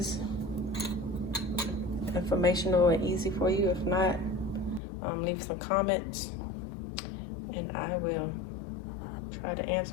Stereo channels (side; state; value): right; drops out; at 4.8 s